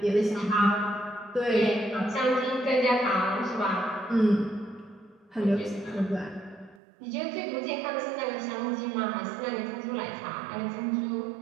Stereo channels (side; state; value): left; drops out; at 6.8 s